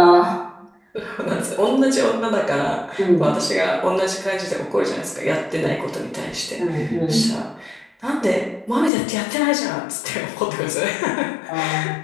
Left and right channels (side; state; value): right; drops out; at 8.9 s